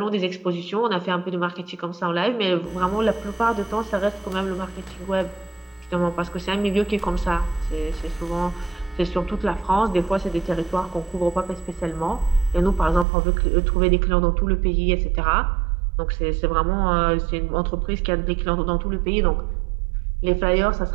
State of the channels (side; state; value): left; drops out; at 13.1 s